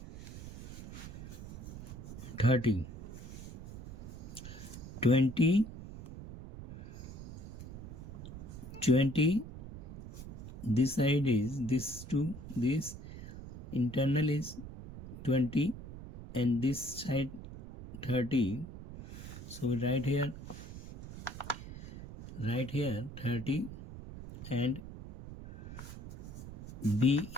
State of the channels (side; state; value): right; noise; rumble, 11 dB below the sound